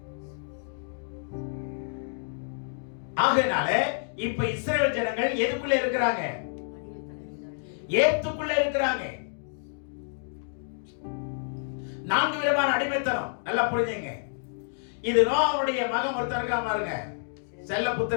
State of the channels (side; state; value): right; silent; digital silence